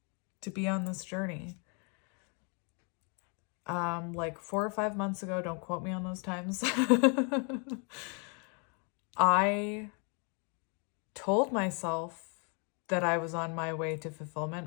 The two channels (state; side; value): quieter; right; 36.4 dB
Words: to be on this journey. Like 4 or 5 months ago, don't quote me on those times, I told myself that I was on my way to